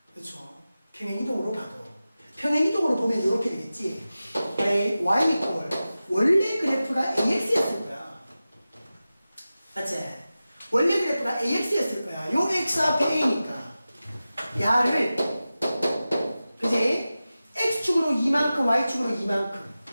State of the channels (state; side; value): inverted; both; correlation -0.95